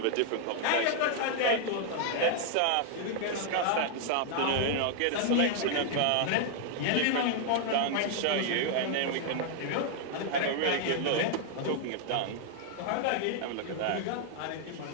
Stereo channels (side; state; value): both; different; correlation 0.00